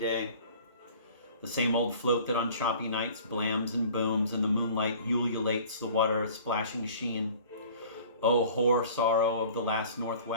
The same old float that on choppy nights blams and booms and the moonlight ululates the water a splashing sheen. Oh, hoar sorrow of the last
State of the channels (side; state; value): both; inverted; correlation -0.47